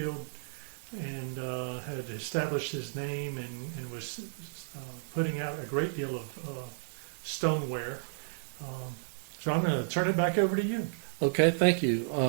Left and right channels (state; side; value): silent; left; 56 dB below the other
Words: and had established his name and was putting out a great deal of stoneware. So I'm going to turn it back over to you. Okay, thank you.